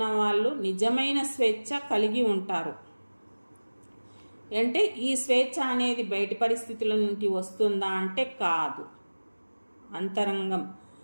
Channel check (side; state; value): both; inverted; correlation -1.00